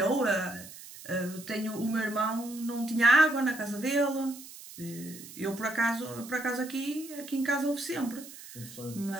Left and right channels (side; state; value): right; noise; hiss, 16 dB below the sound